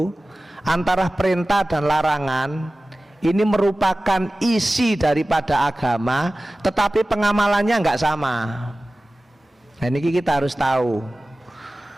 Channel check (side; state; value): both; normal; correlation 0.97